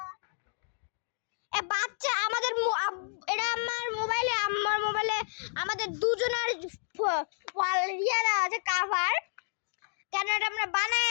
এ বাচ্চা আমাদের এটা আমার মোবাইলে আমাদের দুজনের ইয়ে দেওয়া আছে কাভার। কেন এটা আমরা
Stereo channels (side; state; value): right; silent; digital silence